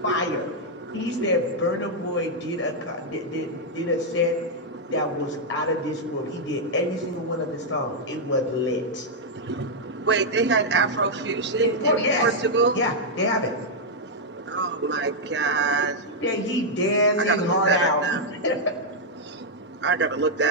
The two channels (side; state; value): both; normal; correlation -0.03